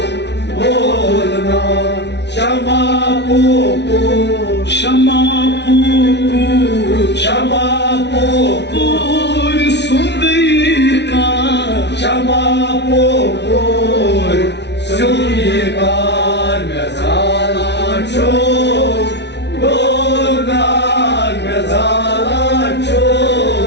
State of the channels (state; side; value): late; right; 0.50 ms